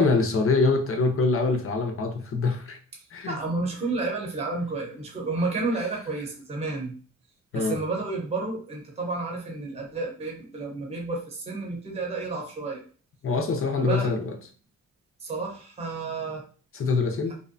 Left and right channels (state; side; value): normal; both; correlation 0.41